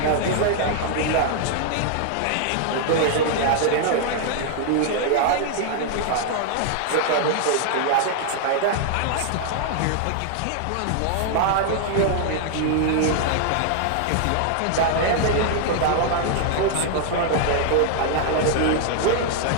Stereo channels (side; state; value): both; different; correlation 0.00